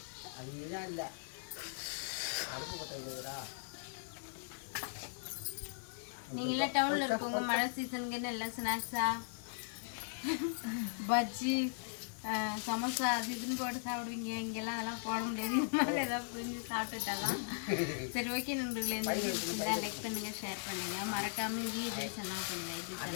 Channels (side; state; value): right; silent; digital silence